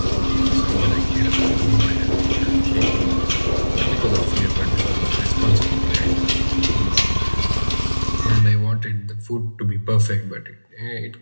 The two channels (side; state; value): both; inverted; correlation -1.00